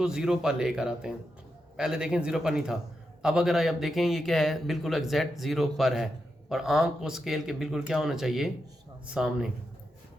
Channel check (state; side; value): normal; both; correlation 0.86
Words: ज़ीरो पर लेकर आते हैं। पहले देखें ज़ीरो पर नहीं था, अब अगर आप देखें ये क्या है, बिल्कुल एग्जैक्ट ज़ीरो पर है और आंख को स्केल के बिल्कुल क्या होना चाहिए, सामने।